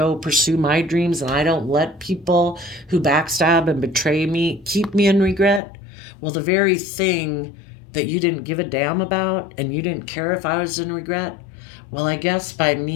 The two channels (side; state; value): right; drops out; at 5.6 s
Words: pursue my dreams and I don't let people who backstab and betray me keep me in regret, well, the very thing that you didn't give a damn about and you didn't care if I was in regret, well, I guess by